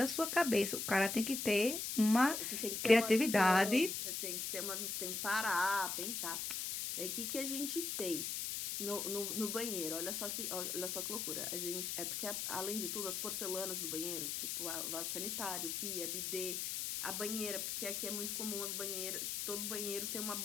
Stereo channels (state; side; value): noise; left; hiss, 2 dB below the sound